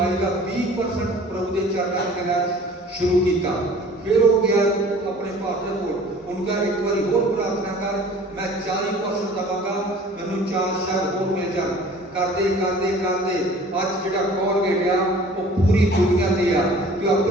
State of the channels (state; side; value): normal; both; correlation 0.48